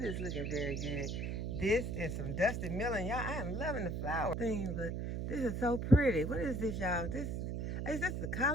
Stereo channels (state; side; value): noise; right; hum, 2 dB below the sound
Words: is looking very good. This is some Dusty Miller. Y'all, I am loving the flower thing, but this is so pretty. What is this, y'all? Is this the